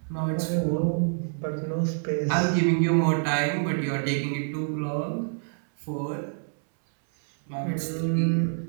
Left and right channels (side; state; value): left; silent; 60 dB below the other